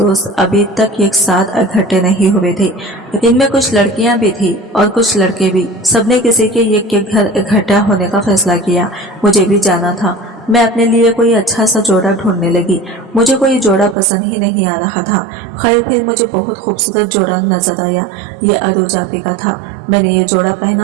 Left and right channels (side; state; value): left; drops out; at 14.0 s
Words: अभी तक एक साथ इकट्ठे नहीं हुए थे। इनमें कुछ लड़कियां भी थी और कुछ लड़के भी। सबने किसी के एक के घर इकट्ठा होने का फैसला किया। मुझे भी जाना था। मैं अपने लिए कोई अच्छा सा जोड़ा ढूंढने लगी। मुझे कोई जोड़ा पसंद ही नहीं आ रहा था। खैर फिर मुझे बहुत खूबसूरत जोड़ा नजर आया। ये अरु जाबी का था। मैंने ये जोड़ा